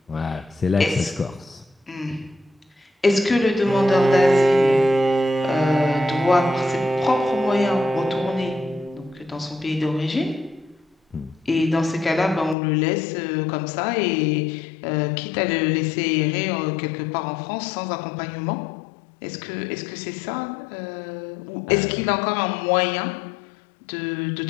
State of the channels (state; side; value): drops out; right; at 12.6 s